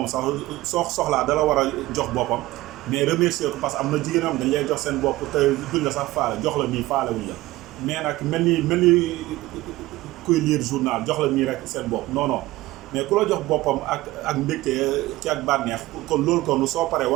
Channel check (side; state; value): left; quieter; 18.0 dB